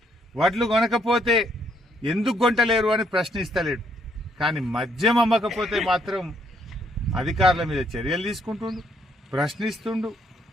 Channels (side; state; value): both; normal; correlation 0.71